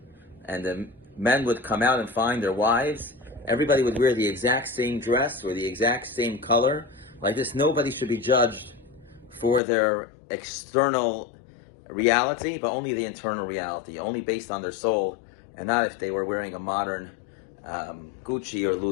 and the men would come out and find their wives. Everybody would wear the exact same dress or the exact same color. Like this, nobody should be judged for their external reality, but only the internal reality, only based on their soul, and not if they were wearing a modern Gucci or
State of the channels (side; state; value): right; drops out; at 9.6 s